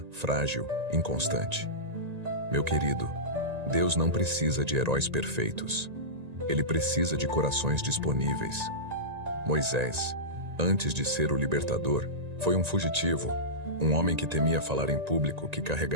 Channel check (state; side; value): late; left; 1.9 ms